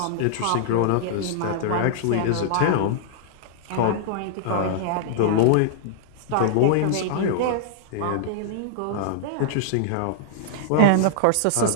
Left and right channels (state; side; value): different; both; correlation -0.01